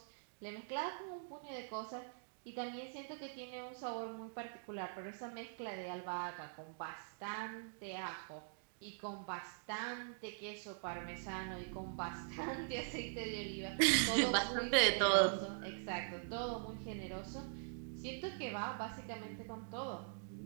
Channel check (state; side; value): silent; left; digital silence